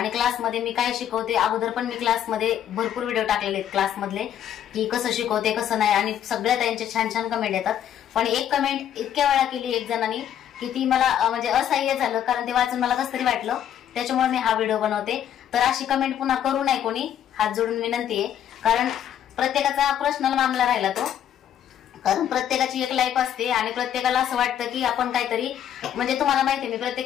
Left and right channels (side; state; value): right; quieter; 10.1 dB